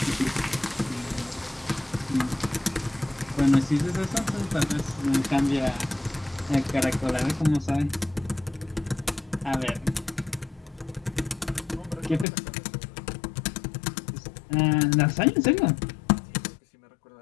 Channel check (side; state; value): right; drops out; at 12.2 s